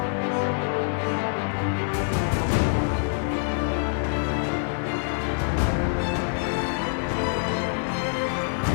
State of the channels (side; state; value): right; silent; 61 dB below the other